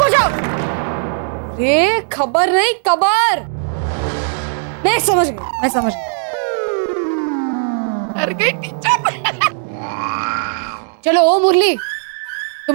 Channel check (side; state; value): left; silent; 68 dB below the other